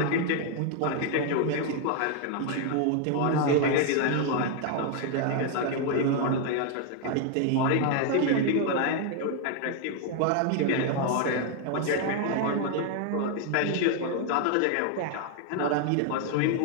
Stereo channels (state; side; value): different; both; correlation 0.00